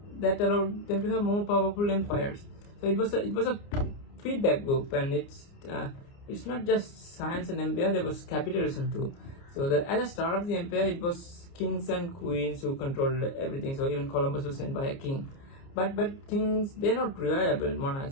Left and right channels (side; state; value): right; late; 29 ms